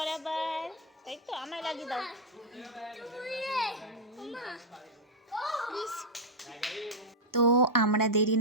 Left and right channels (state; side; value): normal; both; correlation -0.02